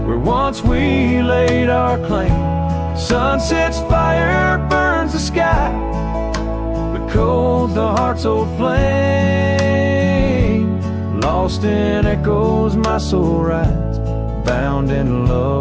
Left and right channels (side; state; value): both; identical; correlation 1.00